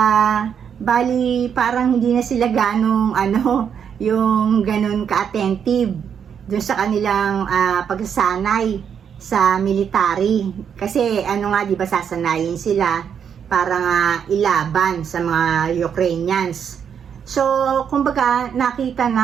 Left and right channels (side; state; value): left; quieter; 7.7 dB